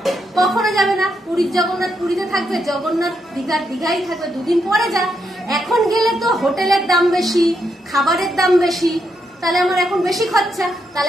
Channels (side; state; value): both; normal; correlation 0.80